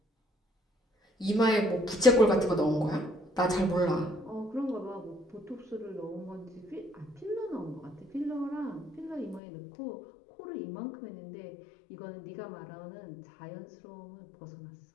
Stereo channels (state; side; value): drops out; right; at 9.4 s